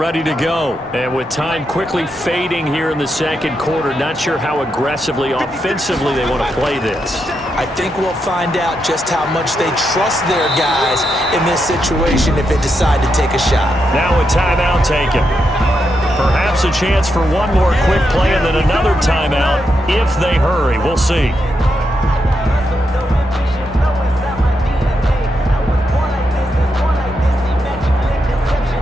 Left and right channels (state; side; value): normal; both; correlation 0.83